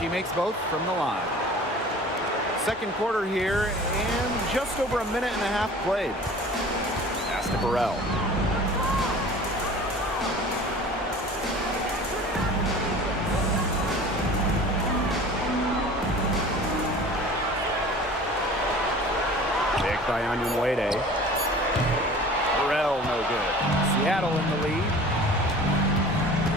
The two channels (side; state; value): both; normal; correlation 0.43